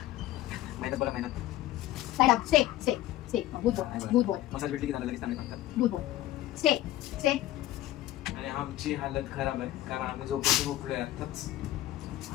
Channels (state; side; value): quieter; right; 14.5 dB